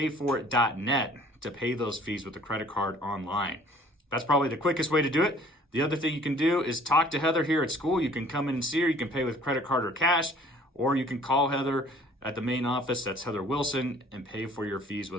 to pay those fees with a credit card online. That's probably the quickest way to do it. The other thing you can do is talk to Heather here at school. You can come in and see her. You can pay with credit card or cash, or you can call Heather at the main office. That's Heather Wilson, and pay for your fees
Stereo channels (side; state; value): both; normal; correlation 0.54